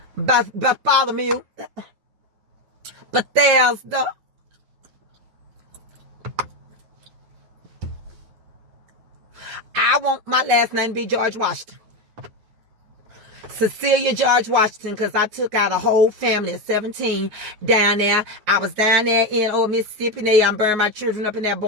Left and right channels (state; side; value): late; left; 9.4 ms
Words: Bartholomew. Bethesda. I want my last name to be George Washington. Cecilia George Washington, because I took out a whole family of 17 down there. I was down there in old Mississippi, and I burned my children up in there